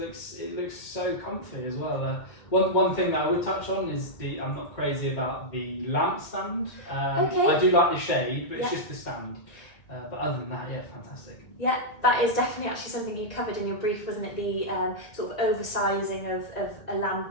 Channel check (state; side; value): late; right; 1.8 ms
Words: so comfy as well. One thing that I would touch on is I'm not crazy about the lamp stand. Okay. I do like the shade, but it's Yeah. just the stand. But other than that, yeah, fantastic. Yeah, that is definitely actually something you covered in your brief, wasn't it? The sort of oversizing of a